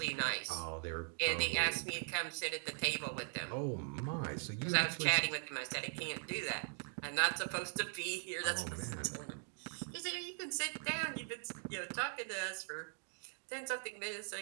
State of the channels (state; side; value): silent; left; 51 dB below the other